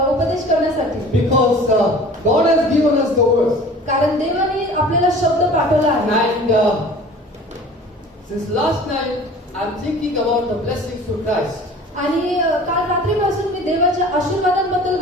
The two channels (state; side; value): normal; both; correlation 0.44